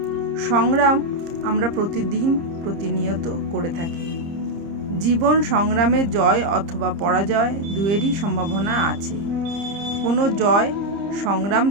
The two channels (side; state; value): left; late; 30 ms